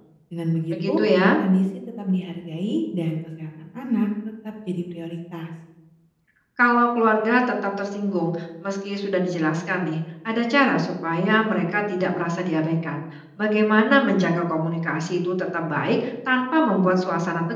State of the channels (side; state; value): both; identical; correlation 1.00